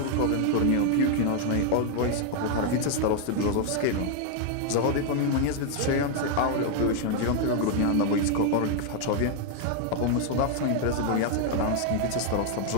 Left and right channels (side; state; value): both; different; correlation 0.00